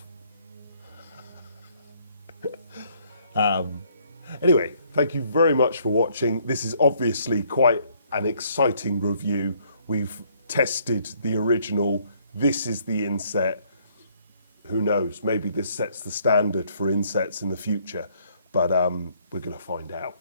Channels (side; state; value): both; inverted; correlation -0.66